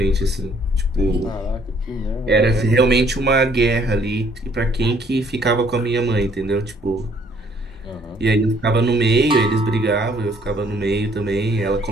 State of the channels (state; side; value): normal; both; correlation 0.63